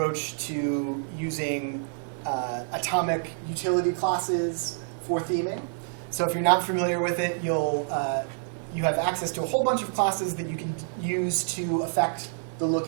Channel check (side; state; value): left; silent; 60 dB below the other